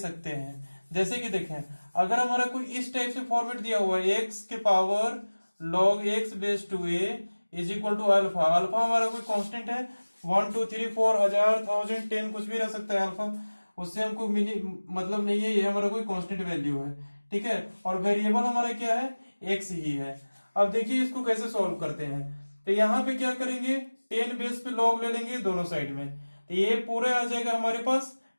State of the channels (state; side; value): inverted; both; correlation -1.00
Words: हैं। जैसे कि देखें, अगर हमारा कोई इस टाइप से फॉर्मेट दिया हुआ है, x के power log x base to a is equal to alpha. Alpha हमारा कोई कांस्टेंट है, 1 2 3 4 1000 1000 10 कुछ भी रह सकता है अल्फा, उससे हमको मतलब नहीं है, ये हमारा कोई कांस्टेंट वैल्यू है। ठीक है, और वेरिएबल हमारा क्या है, x ही है। अब देखिए इसको कैसे सॉल्व करते हैं। तो यहाँ पे क्या करेंगे, 10 बेस पे लॉग ले लेंगे दोनों साइड में, तो ये पूरा आ जाएगा हमारे पास